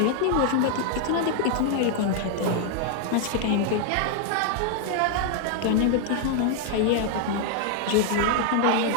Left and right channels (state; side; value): different; both; correlation 0.00